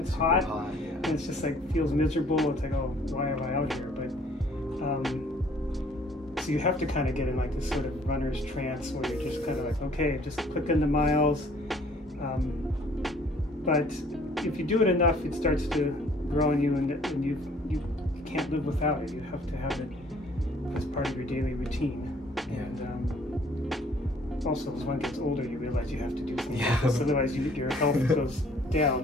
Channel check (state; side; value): normal; both; correlation 0.58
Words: hot, yeah. and it's just like feels miserable. It's like, oh, why am I out here? But so you have to kind of get in like this sort of runner's trance where you're just kind of like, okay, just click into miles. But if you do it enough, it starts to grow on you, and you can't live without it. You have to have it as part of your daily routine. Yeah. And also, as one gets older, you realize you have to do things Yeah. like this, otherwise your health goes